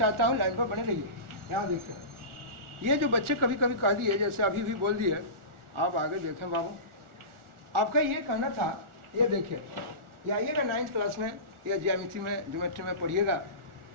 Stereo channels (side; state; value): left; late; 1.4 ms